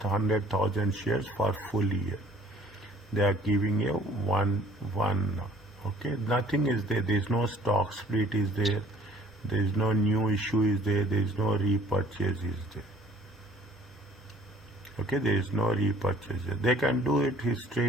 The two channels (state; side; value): normal; both; correlation 0.55